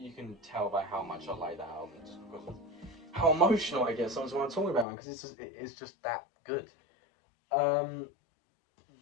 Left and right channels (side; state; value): right; drops out; at 4.9 s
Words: can tell by how much I like that album, just because of how emotional I get sometimes when I'm talking about it, because it's just that good.